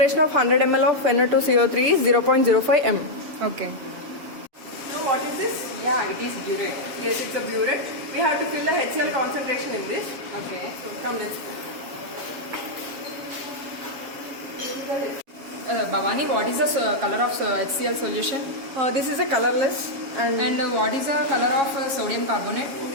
of 100 ml of Na2CO3 is 0.05 m. Okay. Now what is this? Yeah, it is burette. Yes, it's a burette. We have to fill the HCl concentration in this. Okay. So come, let's go. This is the HCl. Bhavani, what is the color of HCl solution? This is a colorless and what is the color of sodium carbonate?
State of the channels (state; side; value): late; left; 7.3 ms